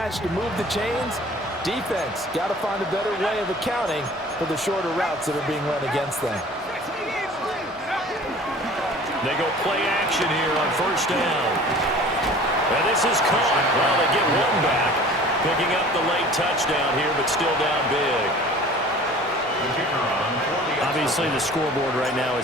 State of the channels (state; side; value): normal; both; correlation 0.46